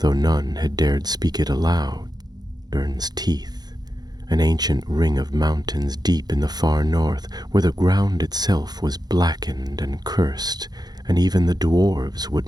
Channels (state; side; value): late; left; 0.19 ms